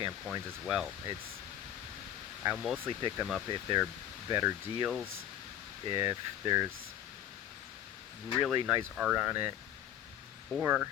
coins as well. I'll mostly pick them up if they're better deals, if there's really nice art on it, or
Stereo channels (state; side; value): quieter; right; 10.9 dB